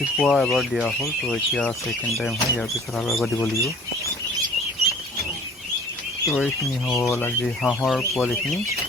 এবাৰ দিয়া হ'ল, তো এতিয়া ছেকেণ্ড টাইম হয়, ইয়াৰ পিছত আৰু এবাৰ দিব লাগিব। তো এইখিনি হ'ল আজি হাঁহৰ পোৱালিখিনি।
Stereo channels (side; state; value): both; normal; correlation 0.49